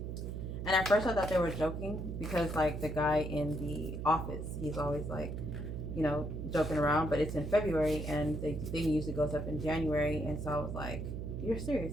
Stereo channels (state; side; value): noise; right; hum, 5 dB below the sound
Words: And at first I thought they were joking because like the guy in the office, he's always like, you know, joking around, but it's in February and the thing usually goes up in January. And so I was like, you're